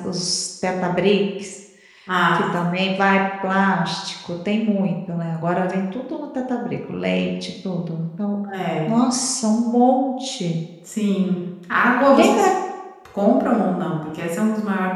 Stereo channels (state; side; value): identical; both; correlation 1.00